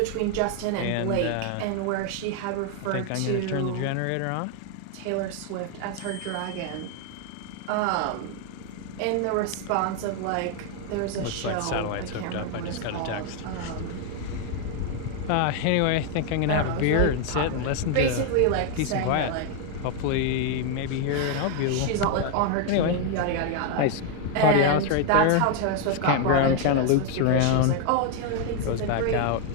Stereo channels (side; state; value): both; different; correlation 0.01